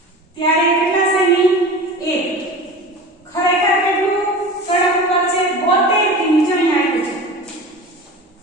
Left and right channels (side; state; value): both; normal; correlation 0.34